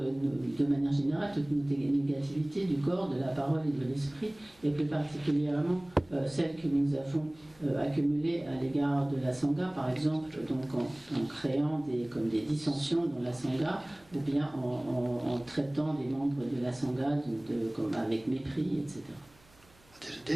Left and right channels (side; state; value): right; noise; hum, 29 dB below the sound